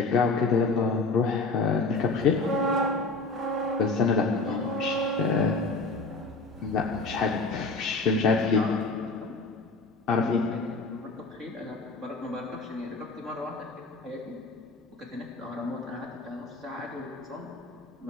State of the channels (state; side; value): quieter; right; 3.5 dB